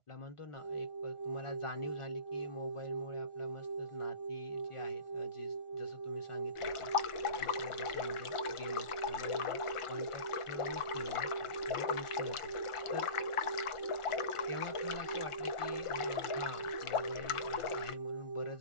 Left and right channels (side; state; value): right; late; 1.4 ms